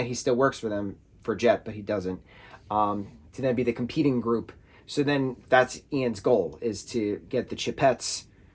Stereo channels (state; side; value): identical; both; correlation 1.00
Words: he still works for them for Jet, but he doesn't, to then be the competing group. So then that's Ian's goal, is to get the Chipettes,